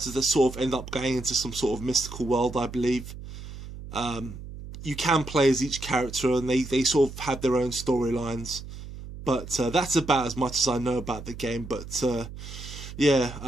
that sort of end up going into some sort of mystical world, I believe. You can play as each character, and they sort of have their own storylines. But that's about as much as I know about the game. But yeah,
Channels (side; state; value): right; noise; hum, 12 dB below the sound